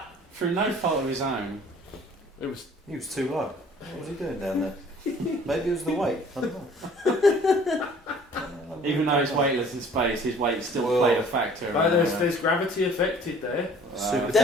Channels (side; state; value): both; normal; correlation 0.53